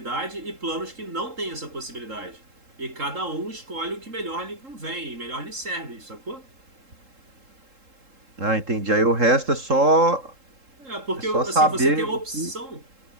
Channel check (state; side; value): late; left; 3.7 ms